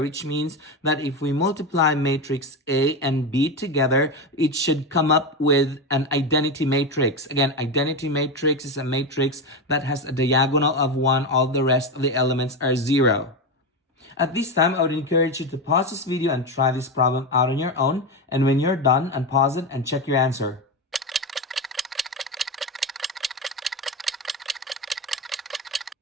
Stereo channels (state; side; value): normal; both; correlation 0.16